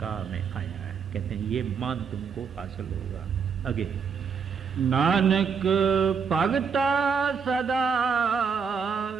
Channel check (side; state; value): left; quieter; 6.2 dB